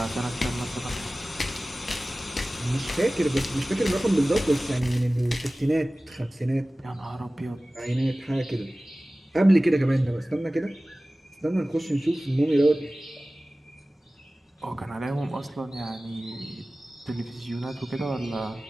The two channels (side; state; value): both; normal; correlation 0.97